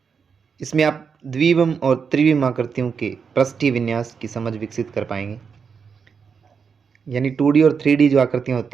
इसमें आप द्विविम और त्रिविम आकृतियों के पृष्ठीय विन्यास की समझ विकसित कर पाएंगे, यानी 2D और 3D जो आकृतियाँ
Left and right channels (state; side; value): quieter; left; 6.1 dB